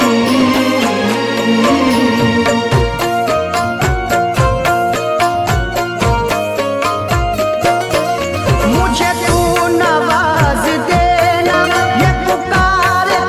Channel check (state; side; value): identical; both; correlation 1.00